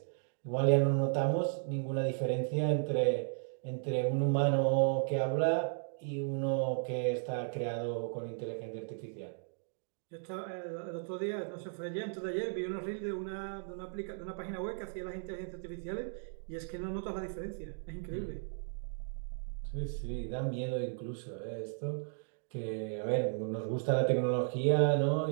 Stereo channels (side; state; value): left; silent; digital silence